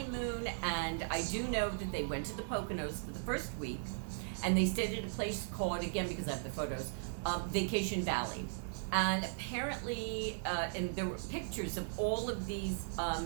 and I do know that they went to the Poconos for the first week, and they stayed at a place called, again, because I have the photos, Vacation Valley. And apparently, and there were pictures of all of these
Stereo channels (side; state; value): left; silent; digital silence